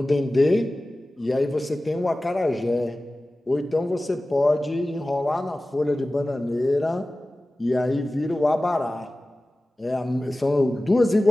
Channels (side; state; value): both; normal; correlation 0.97